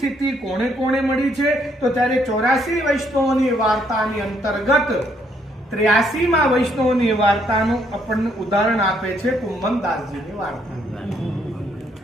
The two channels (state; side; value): normal; both; correlation 0.71